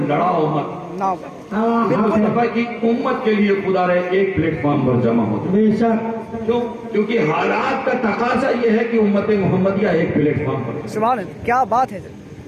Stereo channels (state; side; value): identical; both; correlation 1.00